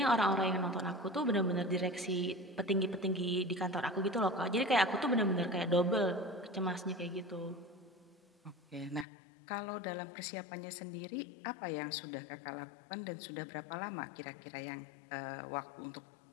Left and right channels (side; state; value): right; drops out; at 9.1 s